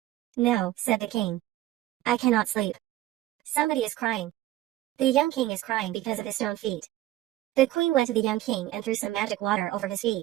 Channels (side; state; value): left; quieter; 15.2 dB